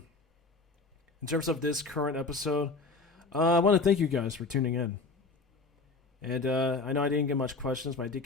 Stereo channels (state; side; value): quieter; right; 3.9 dB